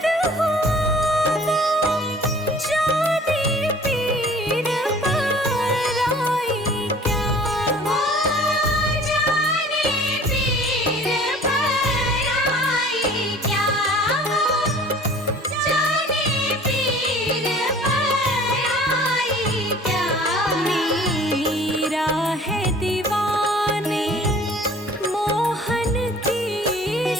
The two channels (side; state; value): both; normal; correlation 0.49